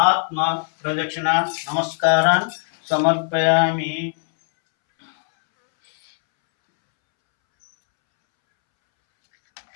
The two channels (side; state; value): right; silent; 65 dB below the other